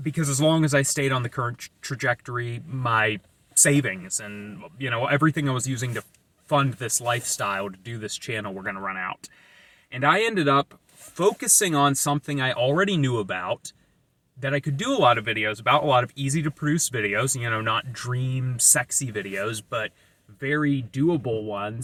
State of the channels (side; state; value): both; identical; correlation 1.00